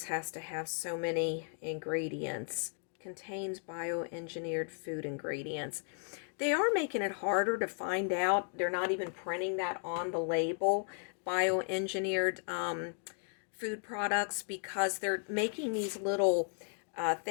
has to have so many ingredients. Contains bioengineered food ingredients. They are making it harder to find out. They're not even printing that on the label, bioengineered food products, because they're making these little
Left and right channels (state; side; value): silent; right; 54 dB below the other